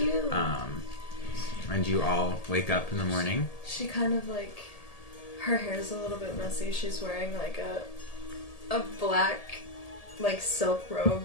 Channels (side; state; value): right; late; 1.8 ms